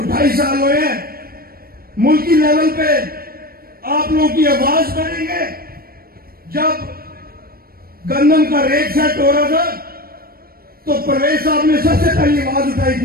2.5 سال ہوئے ہیں, ملکی لیول پہ آپ لوگوں کی آواز بنیں گے. جب گندم کا ریٹ سیٹ ہو رہا تھا تو پرویز صاحب نے سب سے پہلی آواز اٹھائی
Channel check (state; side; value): late; left; 0.44 ms